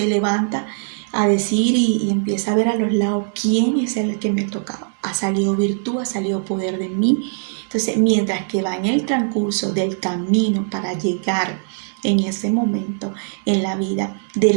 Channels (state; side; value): silent; left; 59 dB below the other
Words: levanta a decir y empieza a ver a los lados quién es el que me ha tocado. Ha salido virtud, ha salido poder de mí. Entonces, mientras que va en el transcurso del camino para llegar en ese momento en la vida de